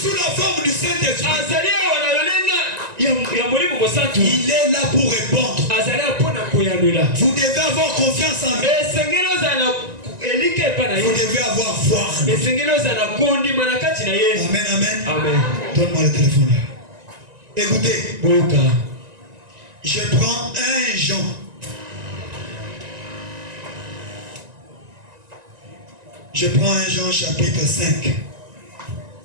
sous la forme du Saint-Esprit. Il est là pour répondre. Vous devez avoir confiance en lui. Vous devez avoir foi. Amen, amen. Donne-moi le téléphone là. Écoutez, je prends 1 Jean. Je prends 1 Jean chapitre 5.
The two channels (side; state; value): left; late; 1.9 ms